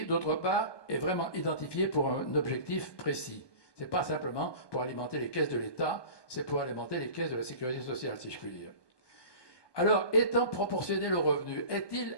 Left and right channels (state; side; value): late; right; 1.2 ms